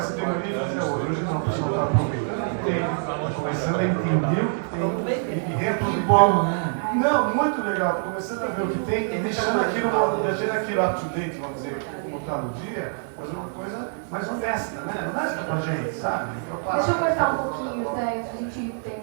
de maneira e fazia outra. Hoje não, o pessoal está aproveitando o que tem, está começando a entender o que tem e reaproveitando. Bom, né? Não, muito legal, estou começando a ver o que tem e deixando aquilo up to date, vamos dizer, como está no dia, fazer uma coisa mais honesta, né? Honesta pra gente, sabe? Deixa eu cortar um pouquinho, né? A gente tem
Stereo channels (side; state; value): left; silent; 62 dB below the other